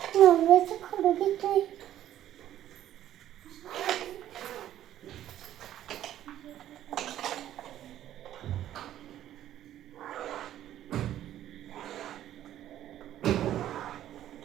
नवऱ्याचं खडू घेतोय.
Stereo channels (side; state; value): left; quieter; 12.1 dB